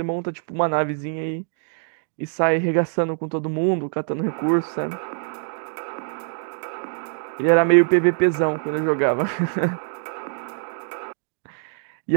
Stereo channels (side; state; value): left; silent; digital silence